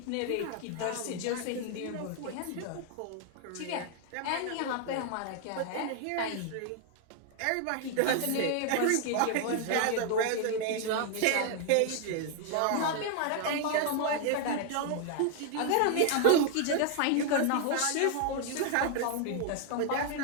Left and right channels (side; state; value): both; different; correlation 0.00